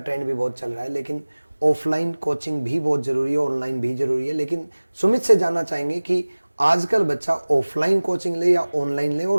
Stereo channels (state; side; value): inverted; both; correlation -1.00